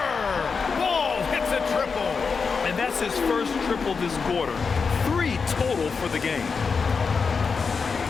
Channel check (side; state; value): right; quieter; 5.2 dB